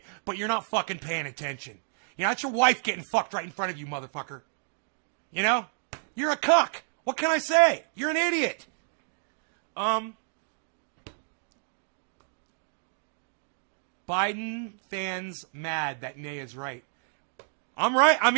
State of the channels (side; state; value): left; silent; digital silence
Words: but you're not fucking paying attention. You know, that's your wife getting fucked right in front of you, motherfucker. You know? You're a cuck. What can I say? You're an idiot. Biden fans mad that Nay is right. I'm right. I